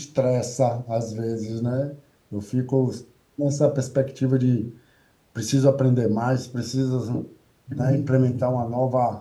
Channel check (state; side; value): identical; both; correlation 1.00